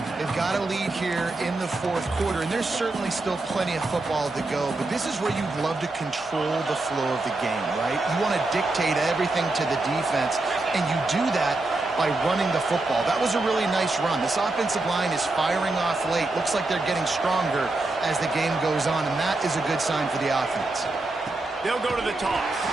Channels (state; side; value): quieter; left; 3.0 dB